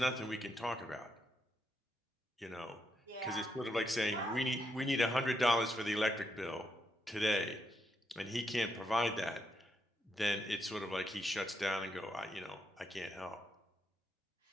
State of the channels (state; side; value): normal; both; correlation 0.80